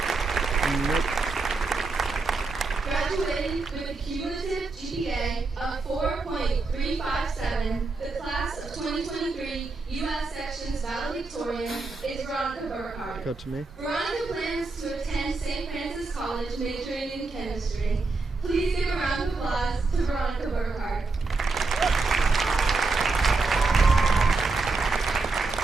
Graduating with a cumulative GPA of 4.357, the class of 2023 U.S. Sections valedictorian is Veronica Burkhardt. Go to me. Veronica plans to attend St. Francis College majoring in chemistry. Please give a round of applause to Veronica Burkhardt.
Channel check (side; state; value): left; quieter; 3.8 dB